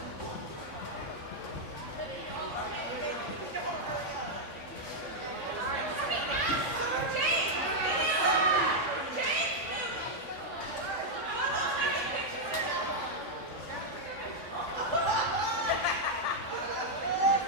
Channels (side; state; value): right; late; 3.6 ms